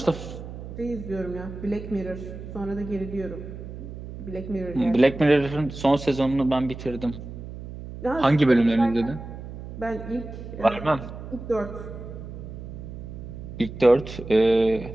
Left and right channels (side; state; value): right; noise; hum, 11 dB below the sound